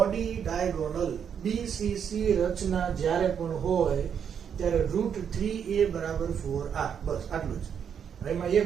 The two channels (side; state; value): left; quieter; 7.8 dB